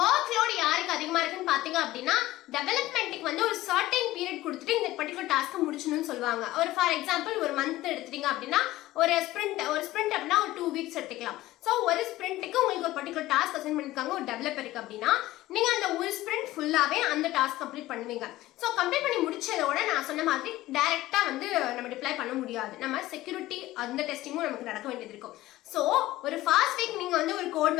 லோட் யாருக்கு அதிகமா இருக்குன்னு பாத்தீங்க அப்படின்னா டெவலப்மெண்ட்டுக்கு வந்து ஒரு சர்டைன் பீரியட் கொடுத்துட்டு இந்த பர்டிகுலர் டாஸ்க்கை முடிச்சணும்னு சொல்லுவாங்க. ஒரு ஃபார் எக்ஸாம்பிள் ஒரு மந்த் எடுத்துட்டீங்க அப்படின்னா ஒரு ஸ்பிரிண்ட் அப்படின்னா ஒரு 2 weeks எடுத்துக்கலாம். ஸோ ஒரு ஸ்பிரிண்ட்டுக்கு உங்களுக்கு ஒரு பர்டிகுலர் டாஸ்க் அசைன் பண்ணிருக்காங்க ஒரு டெவலப்பருக்கு அப்படின்னா நீங்க அந்த ஒரு ஸ்பிரிண்ட் ஃபுல்லாவே அந்த டாஸ்க் கம்ப்ளீட் பண்ணுவீங்க. ஸோ கம்ப்ளீட் பண்ணி முடிச்சதோட நான் சொன்ன மாதிரி டைரக்டா வந்து நம்ம டிப்ளை பண்ண முடியாது. நம்ம செக்யூரிட்டி அந்த டெஸ்டிங்கும் நமக்கு நடக்க வேண்டியது இருக்கும். ஸோ ஒரு ஃபர்ஸ்ட் வீக் நீங்க வந்து ஒரு கோட்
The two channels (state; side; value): quieter; right; 16.6 dB